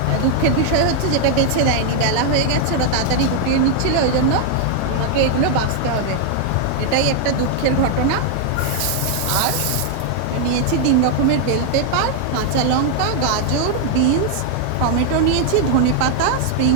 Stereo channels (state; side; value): different; both; correlation 0.00